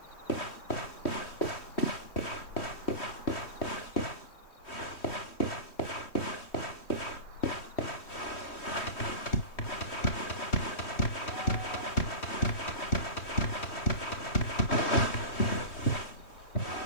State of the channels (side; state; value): right; late; 3.1 ms